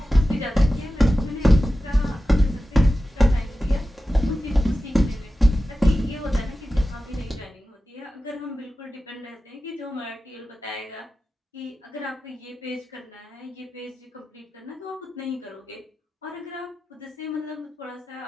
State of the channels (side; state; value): both; normal; correlation 0.93